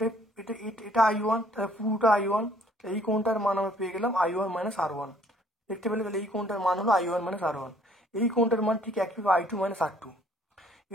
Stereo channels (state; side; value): normal; both; correlation 0.60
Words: এটা I1, তাহলে পুরোটা I1, এই কোণটার মান আমরা পেয়ে গেলাম I1 মাইনাস R1। দেখতে পেলে, তাহলে এই কোণটার মান হলো I1 মাইনাস R1, এই কোণটার মান ঠিক একইভাবে I2 মাইনাস R2।